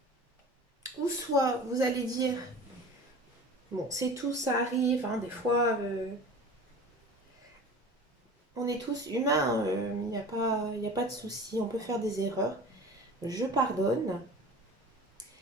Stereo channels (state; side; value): normal; both; correlation 0.39